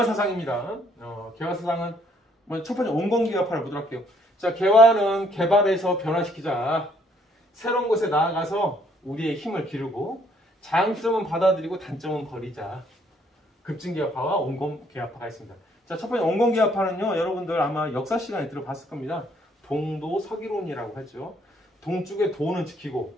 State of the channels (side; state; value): both; normal; correlation 0.66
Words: 개화사상은 첫 번째 온건계합파를 보도록 할게요. 자, 개화는 개발해서 변화시키자. 새로운 곳에 나아가서 우리의 힘을 기르고 장점은 받아들이고 단점은 버리자. 급진계합파와 온건계합파가 있습니다. 자, 첫 번째 온건계합파는요, 여러분들 아마 역사 시간에 들어봤을 겁니다. 동도 서기론이라고 하죠. 동쪽의 도는 지키고